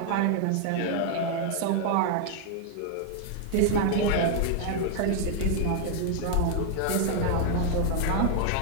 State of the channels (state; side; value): different; both; correlation 0.00